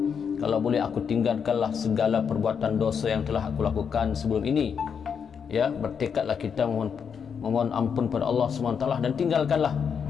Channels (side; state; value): right; quieter; 6.9 dB